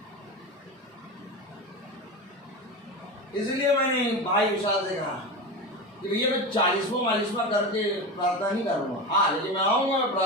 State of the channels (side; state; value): both; normal; correlation 0.23